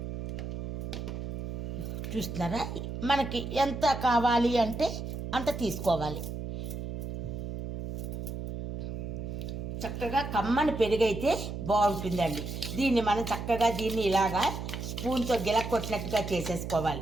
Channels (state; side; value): noise; right; hum, 6 dB below the sound